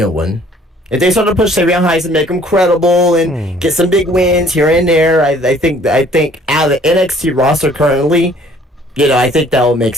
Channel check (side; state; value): both; normal; correlation 0.57